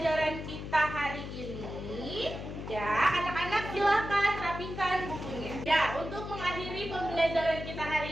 kita hari ini. Ya, anak-anak silakan rapikan bukunya. Ya, untuk mengakhiri pembelajaran kita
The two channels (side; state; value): left; noise; hum, 8 dB below the sound